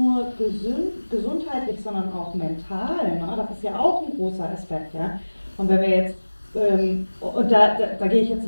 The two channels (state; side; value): inverted; both; correlation -1.00